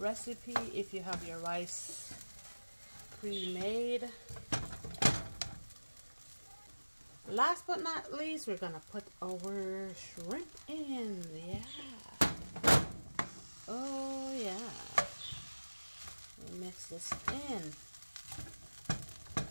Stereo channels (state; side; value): inverted; both; correlation -1.00